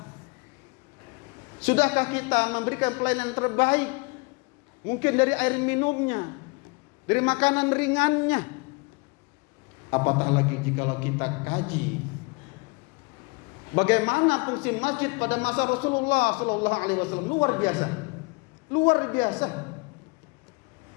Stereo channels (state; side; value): quieter; right; 28.7 dB